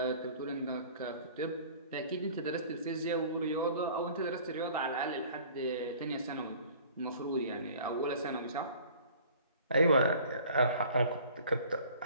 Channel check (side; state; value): both; inverted; correlation -0.49